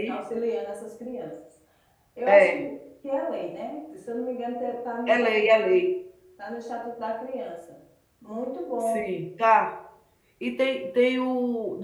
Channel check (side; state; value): both; identical; correlation 1.00